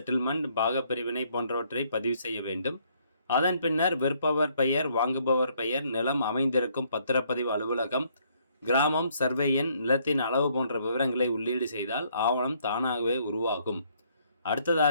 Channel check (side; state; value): both; inverted; correlation -0.68